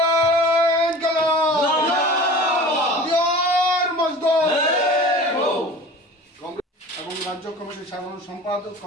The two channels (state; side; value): normal; both; correlation 0.40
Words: এবং রাজ্য কমিটির সাধারণ সম্পাদক